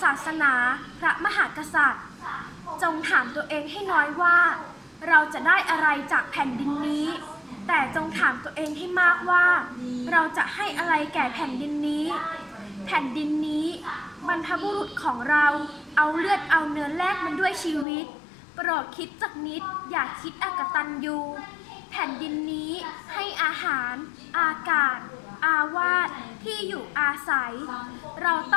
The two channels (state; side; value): drops out; right; at 17.9 s